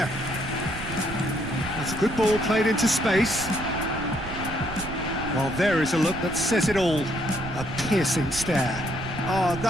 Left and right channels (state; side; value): noise; right; rumble, 9 dB below the sound